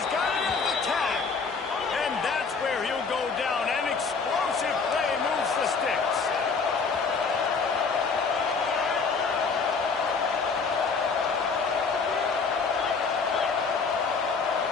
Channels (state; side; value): quieter; right; 4.9 dB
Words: got it on the tag. And that's where he'll go down. An explosive play moves the sticks.